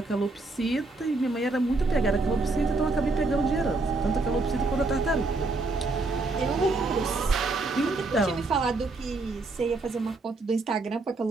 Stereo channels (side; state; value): left; quieter; 3.3 dB